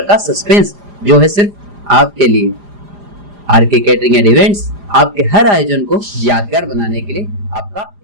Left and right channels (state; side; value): late; left; 4.9 ms